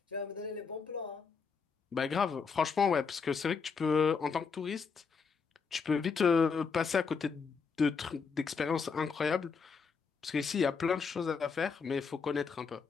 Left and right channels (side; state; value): right; quieter; 5.5 dB